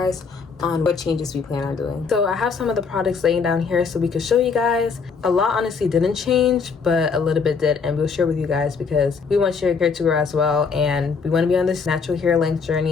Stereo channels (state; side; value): quieter; right; 5.4 dB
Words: on what changes we plan on doing. So I have some of the products laying down here so we could show you guys. A lot honestly didn't change, but a little bit did, and we'll share with you guys because we want your hair to grow as well, and we want to be on this natural hair length